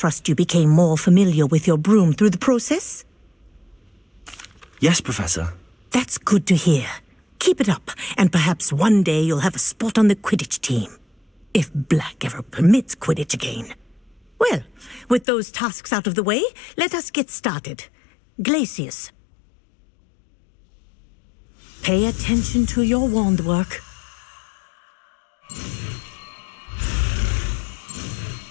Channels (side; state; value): right; drops out; at 15.2 s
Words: you became more familiar with your broom through the process? Yes, Professor. That's good to hear. Keep it up, and perhaps one day you'll have a spot on the Quidditch team. If Black ever permits Quidditch again. Well, with those tasks out of the way, let us get started. Glacius. Pay attention to your wand work.